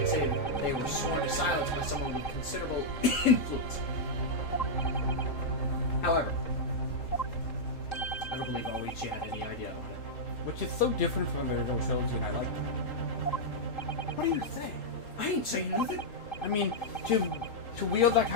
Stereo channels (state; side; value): late; right; 3.8 ms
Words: say that they were sworn to silence by someone with considerable influence. However, I don't believe Oichi had any idea about it. Which is so different from the original trilogy, and I like that. What do you say? I ain't saying nothing. I mean, to wield that